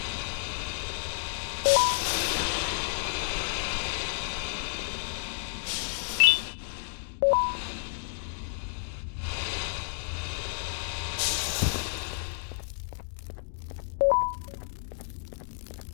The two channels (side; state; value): right; silent; digital silence